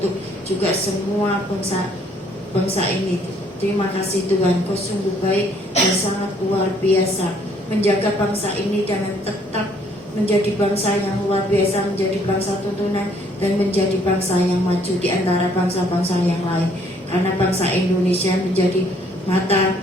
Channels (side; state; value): both; normal; correlation 0.63